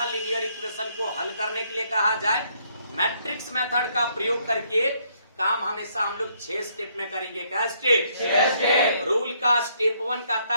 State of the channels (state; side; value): inverted; both; correlation -0.69